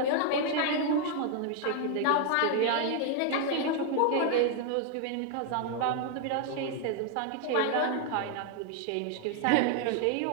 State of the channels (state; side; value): different; both; correlation 0.00